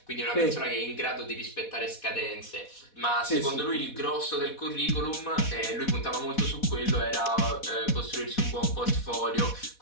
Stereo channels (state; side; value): late; right; 4.1 ms